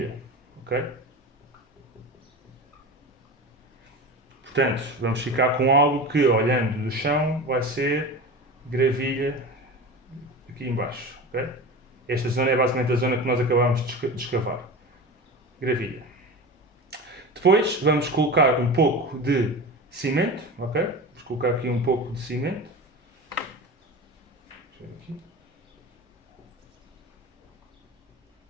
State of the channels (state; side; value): normal; both; correlation 0.30